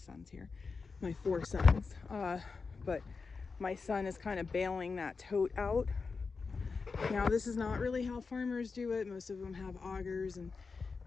here, my 4 sons. But my son is kind of bailing that tote out. Now, this is not really how farmers do it. Most of them have augers and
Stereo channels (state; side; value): quieter; right; 4.7 dB